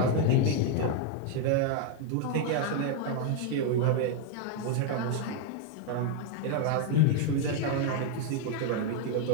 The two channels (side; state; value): both; different; correlation 0.01